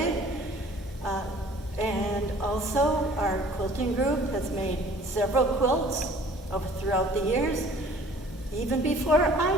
And also our quilting group has made several quilts throughout the years, even before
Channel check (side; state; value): both; normal; correlation 0.51